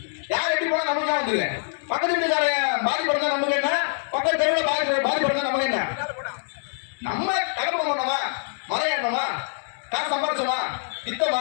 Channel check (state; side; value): silent; right; digital silence